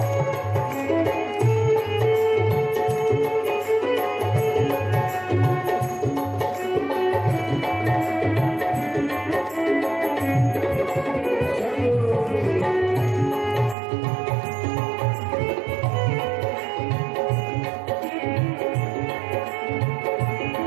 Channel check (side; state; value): left; drops out; at 13.8 s